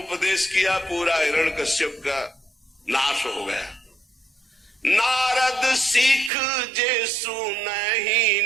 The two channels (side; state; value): left; drops out; at 6.3 s